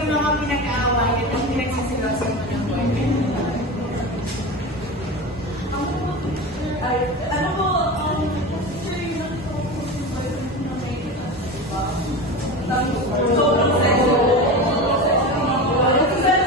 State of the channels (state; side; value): normal; both; correlation 0.26